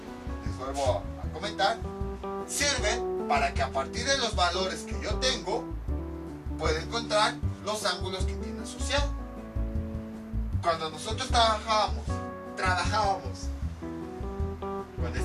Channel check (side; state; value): both; identical; correlation 1.00